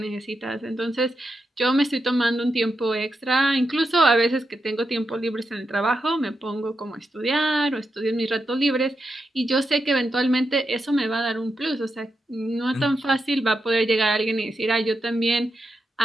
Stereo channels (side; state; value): both; normal; correlation 0.86